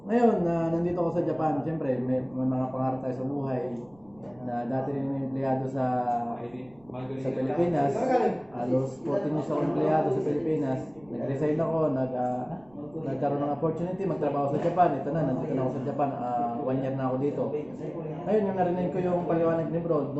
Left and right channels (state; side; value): noise; right; rumble, 29 dB below the sound